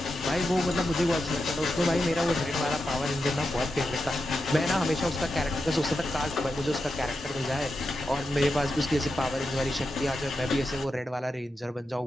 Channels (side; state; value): both; normal; correlation 0.88